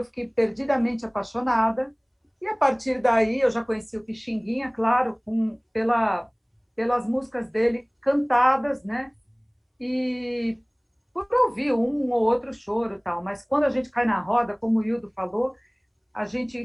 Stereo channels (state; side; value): identical; both; correlation 1.00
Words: fiquei perdidamente apaixonada. E a partir daí eu já conheci o Pixinguinha, claro, pelas músicas dele cantadas, né? E por ouvir um ou outro choro e tal. Mas quando a gente cai na roda, como o Hildo falou, a